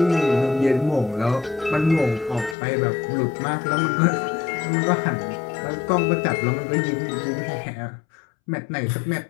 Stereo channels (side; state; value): right; drops out; at 2.6 s